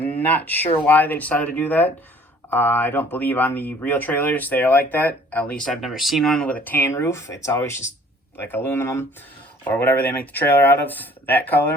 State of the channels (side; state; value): both; normal; correlation 0.55